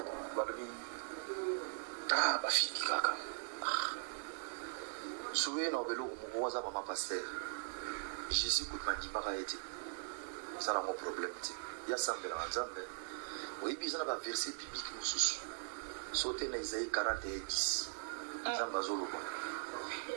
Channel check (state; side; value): silent; left; digital silence